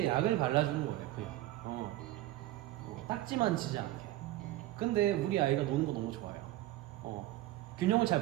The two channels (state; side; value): quieter; left; 15.7 dB